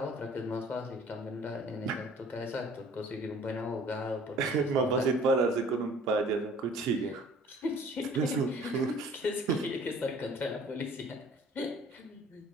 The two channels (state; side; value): normal; both; correlation 0.51